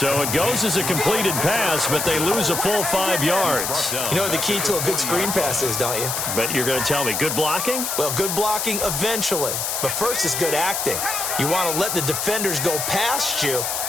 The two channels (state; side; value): noise; left; hiss, 2 dB below the sound